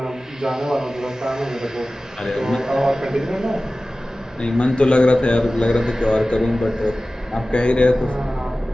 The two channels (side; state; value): both; normal; correlation 0.96